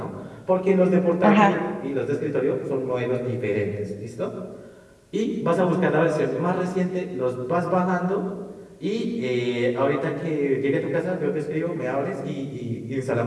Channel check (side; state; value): both; identical; correlation 1.00